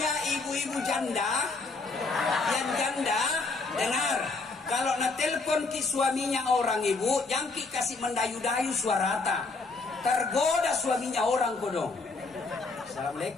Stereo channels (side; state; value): right; quieter; 3.8 dB